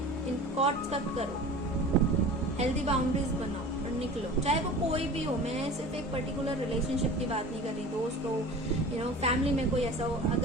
इन कॉट्स कट करो, हेल्दी बाउंड्रीज बनाओ और निकलो, चाहे वो कोई भी हो। मैं सिर्फ एक पर्टिकुलर रिलेशनशिप की बात नहीं कर रही, दोस्त हो, फैमिली में कोई ऐसा हो।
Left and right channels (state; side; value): normal; both; correlation 0.38